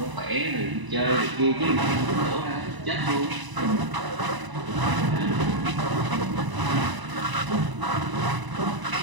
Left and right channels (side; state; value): left; late; 1.0 ms